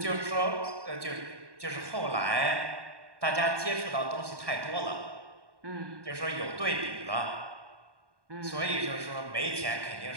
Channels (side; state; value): left; late; 1.2 ms